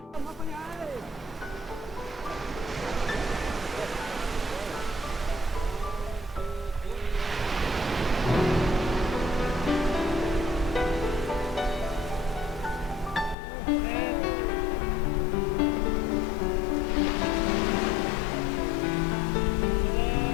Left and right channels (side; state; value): right; drops out; at 13.4 s